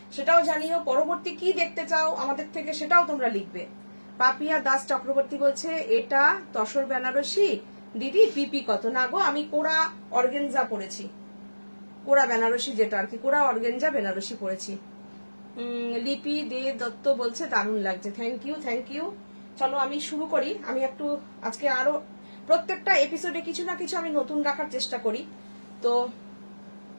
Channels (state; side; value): inverted; both; correlation -1.00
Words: সেটাও জানিও। পরবর্তী কি দেখতে চাও আমাদের থেকে সেটাও তোমরা লিখবে। পাপিয়া দাস চক্রবর্তী বলছে এটা তসর বেনারসি দিদি, পিপি কত? না গো, আমি কোরা অর্গেনজা পরেছি, কোরা বেনারসি যেটা আর কি, কোরা অর্গেনজা বেনারসি পরেছি। লিপি দে দত্ত বলছে দারুণ লাগছে, থ্যাংক ইউ থ্যাংক ইউ। চলো আমি শুরু করি। আমি একটু আজকে আরো প্রত্যেকটা এপিসোডে কিছু না কিছু আমি নতুন রাখার চেষ্টা করি, তো